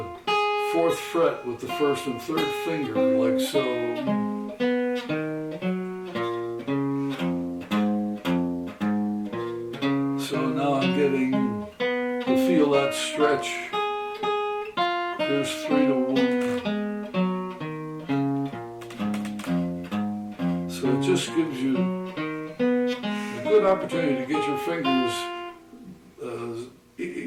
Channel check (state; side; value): identical; both; correlation 1.00